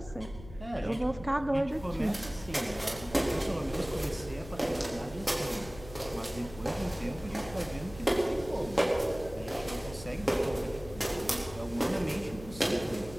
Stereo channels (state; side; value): noise; left; hum, 15 dB below the sound